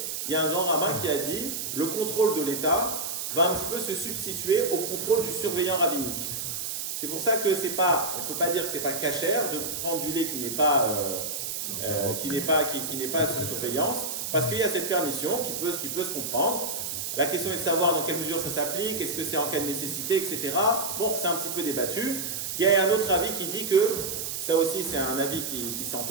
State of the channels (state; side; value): noise; right; hiss, 4 dB below the sound